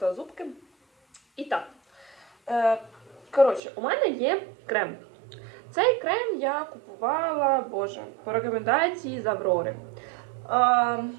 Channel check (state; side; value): drops out; left; at 3.6 s